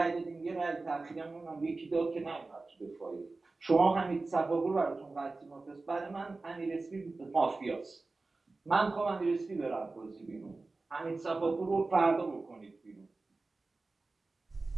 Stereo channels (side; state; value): left; quieter; 3.5 dB